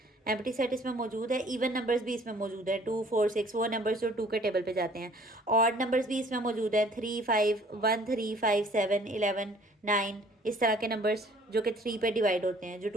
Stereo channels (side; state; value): both; normal; correlation 0.55